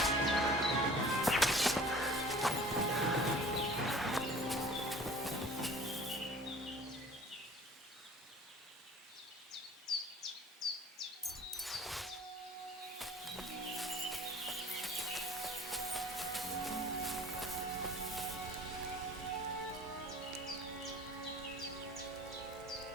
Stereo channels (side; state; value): both; normal; correlation 0.47